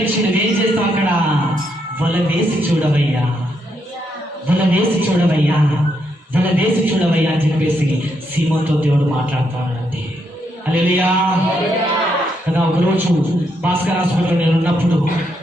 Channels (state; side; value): normal; both; correlation 0.78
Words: నువ్వేం చేస్తావు? అక్కడ వల వేసి చూడవయ్యా, వల వేసి చూడవయ్యా, వల వేసి చూడవయ్యా అని చెప్పేసి సీమతో దేవుడు మాట్లాడుతున్నాడండి. హల్లెలూయా కదా. ఒకరోజు భాస్కర్ హాస్పిటల్లో నేను